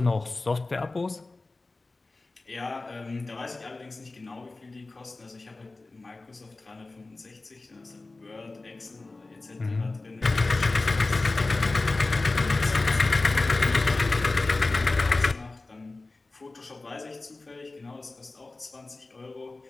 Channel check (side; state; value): right; quieter; 3.3 dB